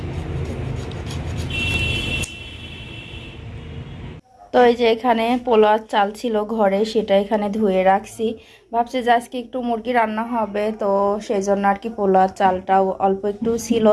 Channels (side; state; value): both; identical; correlation 1.00